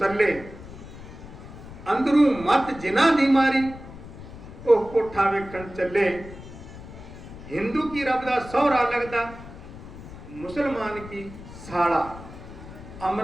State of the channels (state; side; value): noise; left; rumble, 15 dB below the sound